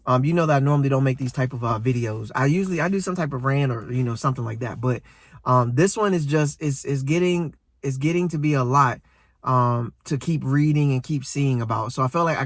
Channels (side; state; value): both; identical; correlation 1.00